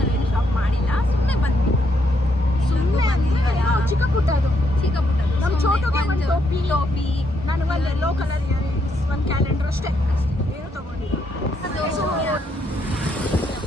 ನಾವೇನು ಶಾಪ್ ಮಾಡಿಲ್ಲ, ಸುಮ್ಮನೆ ಬಂದ್ವಿ. ಚಿಕ್ಕ ಪುಟ್ಟ ಅದು ನಮ್ಮ ಚೋಟುಗೆ ಒಂದು ಟೋಪಿ, ನನಗೆ ಒಂದು ಯೆಲ್ಲೋ ಕಲರ್ ಇಯರಿಂಗ್ಸ್, ಒಂದು ಕ್ಯಾಲೆಂಡರ್ ಅಷ್ಟೇ, ಏನು ತಗೊಂಡಿಲ್ಲ.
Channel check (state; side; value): normal; both; correlation 0.76